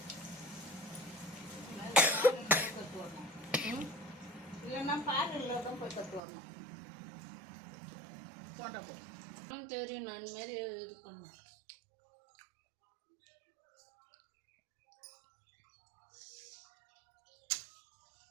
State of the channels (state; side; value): drops out; left; at 6.2 s